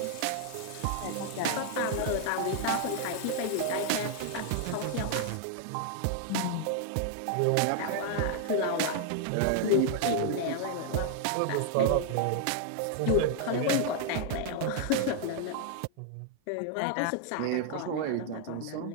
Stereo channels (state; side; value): different; both; correlation 0.00